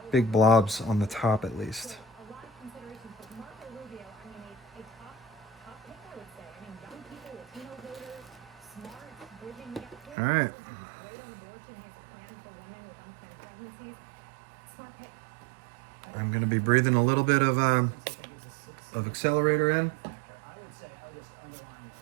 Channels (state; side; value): drops out; left; at 10.2 s